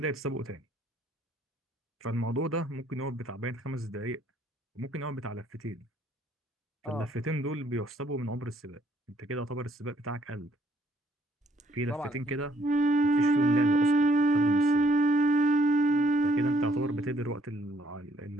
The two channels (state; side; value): normal; both; correlation 0.67